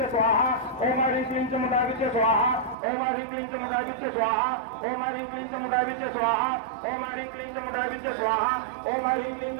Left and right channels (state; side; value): drops out; left; at 2.8 s